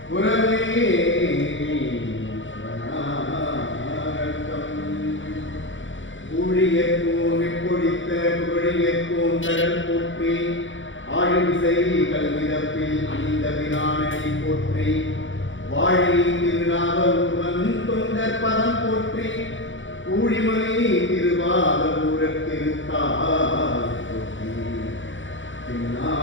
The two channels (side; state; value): right; late; 0.56 ms